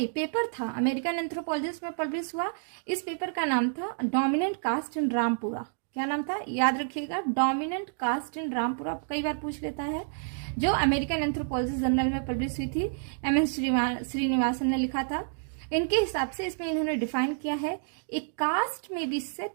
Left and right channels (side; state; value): left; silent; digital silence